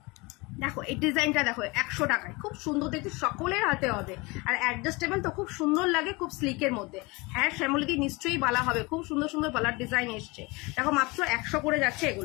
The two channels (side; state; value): right; quieter; 25.2 dB